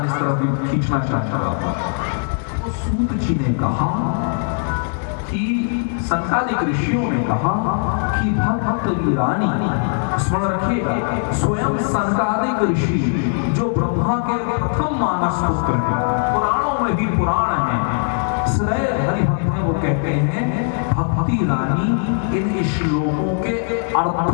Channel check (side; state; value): right; silent; 64 dB below the other